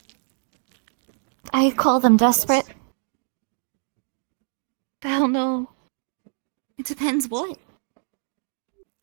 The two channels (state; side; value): silent; left; digital silence